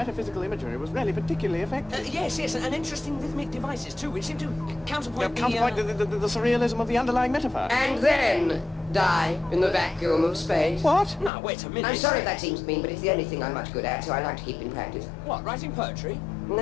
imagery was really particularly effective. Yes, and interesting rhythmic devices too, which seem to counterpoint the surrealism of the underlying metaphor. And then die in the vacuum of space. What? No, wait a minute. I'm sorry if that seems mean, but it's the only thing I'm much good at, so I like to keep in practice. What, writing poetry?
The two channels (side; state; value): right; drops out; at 11.3 s